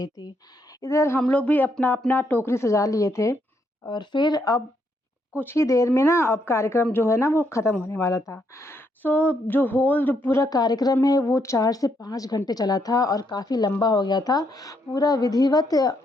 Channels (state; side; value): normal; both; correlation 0.76